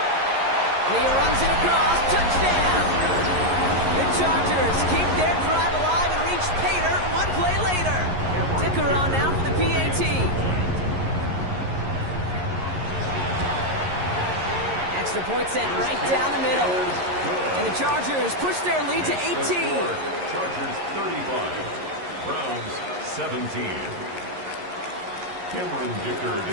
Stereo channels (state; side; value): late; left; 11 ms